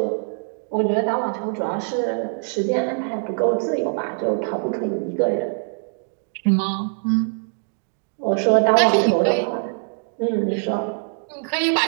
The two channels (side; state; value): left; silent; digital silence